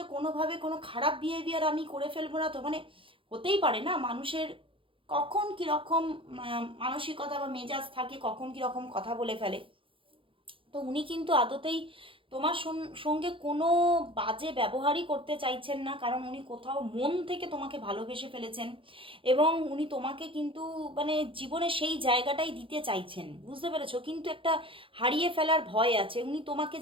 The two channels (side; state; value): left; late; 0.25 ms